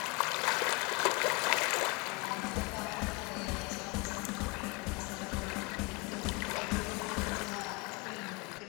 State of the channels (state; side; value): quieter; right; 28.4 dB